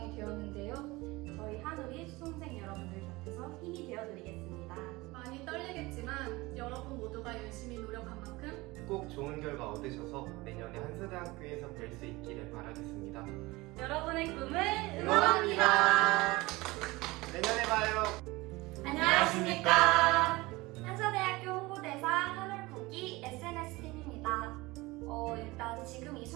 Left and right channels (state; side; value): quieter; left; 21.7 dB